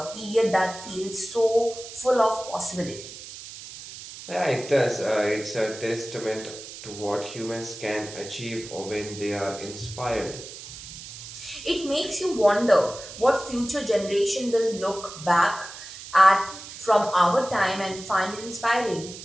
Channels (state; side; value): noise; right; hiss, 13 dB below the sound